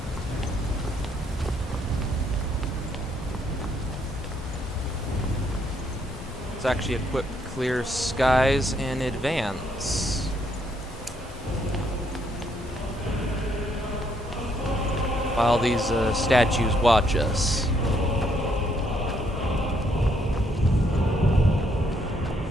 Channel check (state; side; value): normal; both; correlation 0.71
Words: Let's actually equip Clear Skies in advance. While these statues watch us.